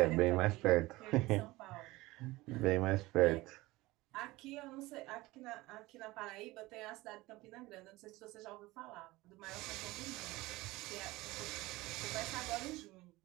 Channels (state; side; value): quieter; left; 19.9 dB